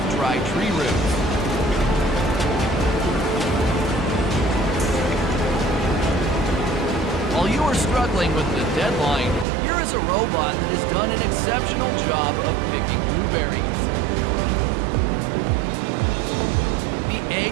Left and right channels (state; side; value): drops out; left; at 9.5 s